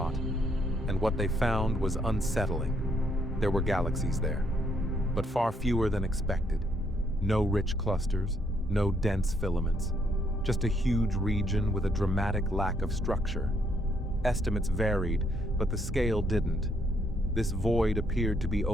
and what they found was unsettling. There were galaxies there, but far fewer than expected. No rich clusters, no dense filaments, just a huge region with a dramatic lack of structure. Estimates varied, but the scale didn't. This void appeared to be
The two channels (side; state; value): both; normal; correlation 0.72